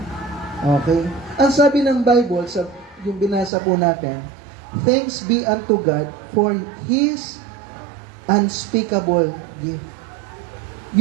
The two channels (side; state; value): left; drops out; at 3.5 s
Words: Okay. Ang sabi ng Bible, yung binasa po natin, thanks be unto God for His unspeakable gift.